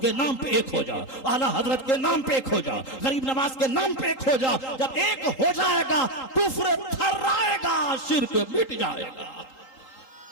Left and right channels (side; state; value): right; late; 3.8 ms